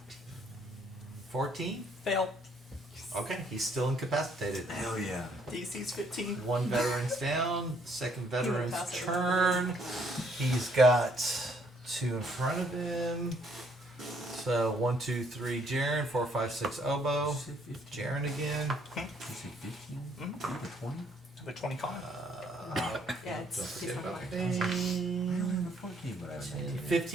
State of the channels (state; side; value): normal; both; correlation 0.67